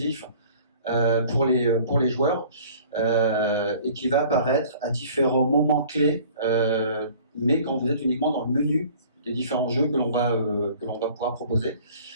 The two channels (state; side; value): inverted; both; correlation -0.50